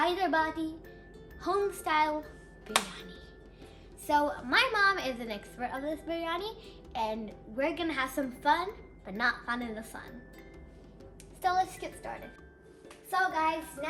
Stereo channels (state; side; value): identical; both; correlation 1.00